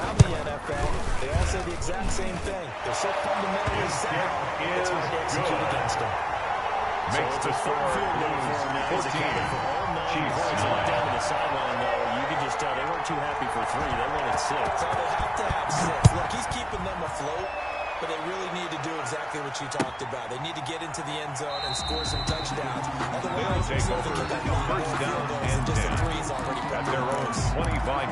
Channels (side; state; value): both; identical; correlation 1.00